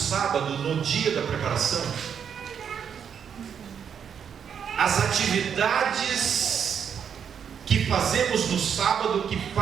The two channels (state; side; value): quieter; left; 7.7 dB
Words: no dia da preparação, as atividades que fazemos no sábado, que